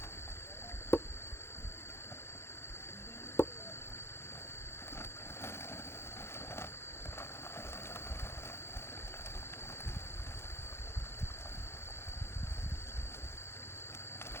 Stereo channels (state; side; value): late; right; 0.12 ms